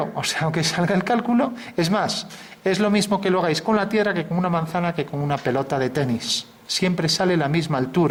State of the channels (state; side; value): identical; both; correlation 1.00